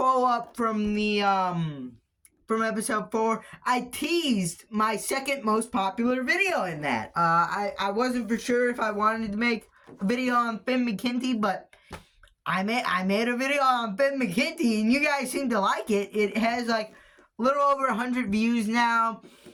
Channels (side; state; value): both; identical; correlation 1.00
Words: from the from episode 4, I teased my second most popular video in that. I wasn't for sure if I wanted to make a video on Finn McKenty, but I made a video on Finn McKenty, and you guys seem to like it. It has like a little over 100 views now.